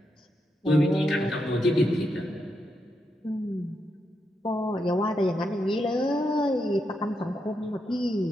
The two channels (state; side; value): normal; both; correlation 0.83